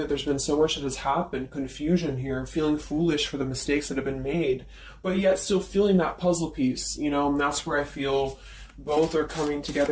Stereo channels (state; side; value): identical; both; correlation 1.00